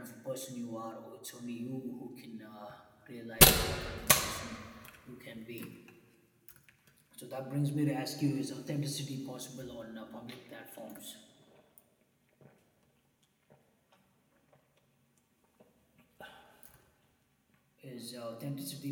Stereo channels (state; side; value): identical; both; correlation 1.00